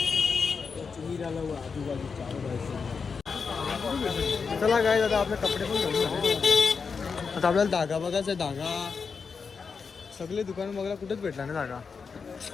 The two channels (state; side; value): quieter; right; 5.4 dB